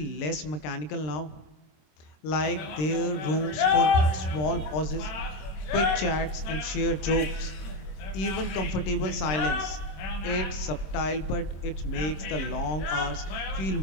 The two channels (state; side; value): late; right; 26 ms